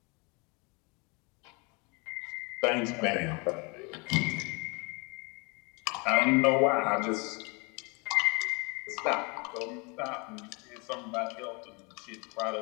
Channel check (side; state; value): right; quieter; 29.9 dB